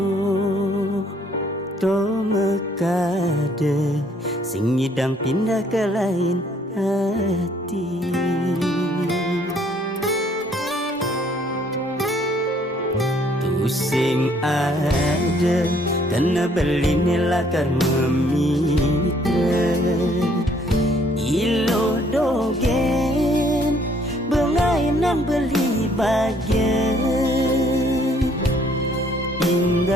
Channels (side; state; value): both; normal; correlation 0.63